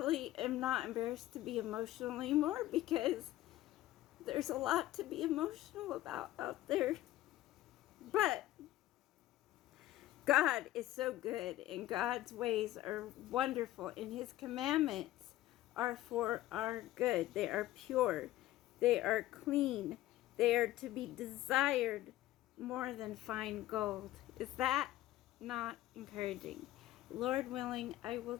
am not embarrassed to be emotional anymore, because there's a lot to be emotional about out there. But God is so good, and God's ways are wonderful, and his commandments are for our good. They are pure. They are clean. They are to be desired more than fine gold. Is that not encouraging? Lord willing, I will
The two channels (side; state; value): right; quieter; 15.2 dB